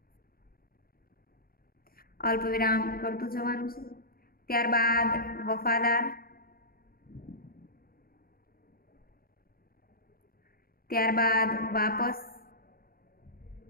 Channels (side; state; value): right; late; 0.43 ms